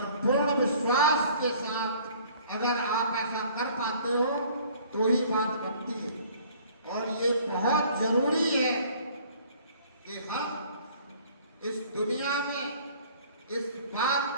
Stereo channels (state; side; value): inverted; both; correlation -0.54